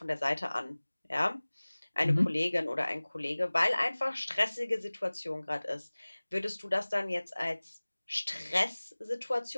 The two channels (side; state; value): both; inverted; correlation -1.00